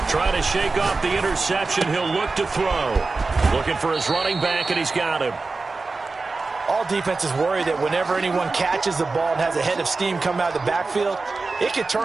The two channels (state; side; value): quieter; left; 3.8 dB